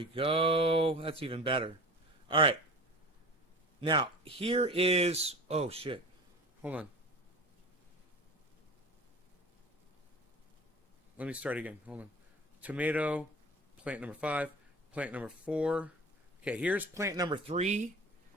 go. That's even better. All right. Now, here is... Oh, shit. Hold on. Let me start again. Hold on. Tomato, plant number 5, plant number 4. Okay, here's plant number 3.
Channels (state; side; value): normal; both; correlation 0.36